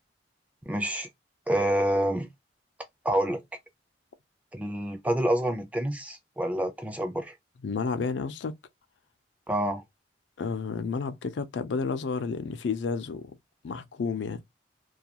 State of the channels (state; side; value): normal; both; correlation 0.67